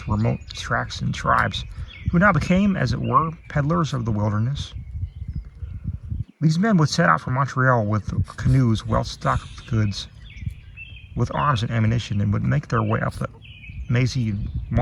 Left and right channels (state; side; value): identical; both; correlation 1.00